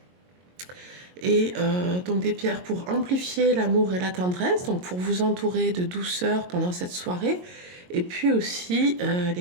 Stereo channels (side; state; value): left; late; 22 ms